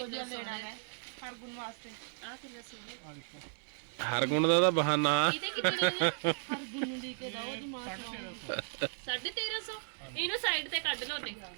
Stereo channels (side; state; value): left; silent; 54 dB below the other